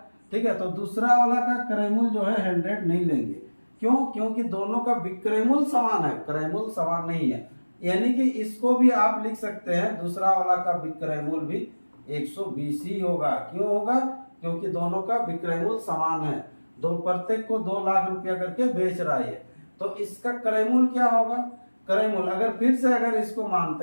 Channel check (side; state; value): both; inverted; correlation -1.00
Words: ठीक है। तो दूसरा वाला का क्रय मूल्य जो है 100 नहीं लेंगे। क्यों, क्योंकि दोनों का विक्रय मूल्य समान है, क्रय मूल्य समान नहीं है। यानी कि इसको भी आप लिख सकते हैं, दूसरा वाला का विक्रय मूल्य भी 120 ही होगा। क्यों होगा, क्योंकि दोनों का विक्रय मूल्य समान है। दो प्रत्येक को 2 लाख रुपया करके बेच रहा है। तो इसका क्रय मूल्य क्या होगा, क्रय मूल्य अगर फिर से अगर इसको